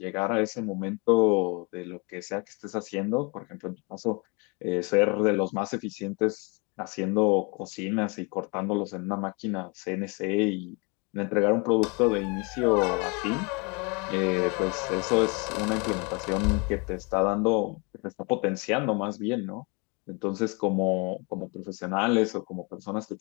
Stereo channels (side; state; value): right; quieter; 30.8 dB